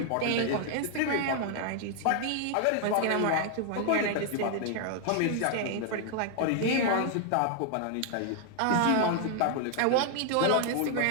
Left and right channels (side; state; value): both; different; correlation 0.00